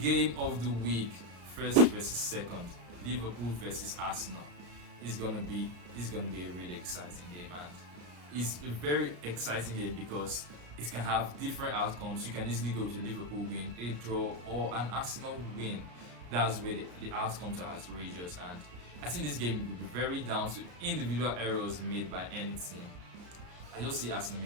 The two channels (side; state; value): left; late; 34 ms